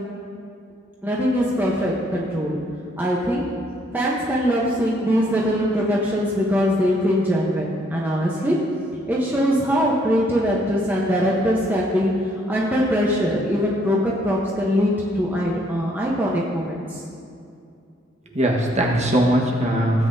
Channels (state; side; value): normal; both; correlation 0.68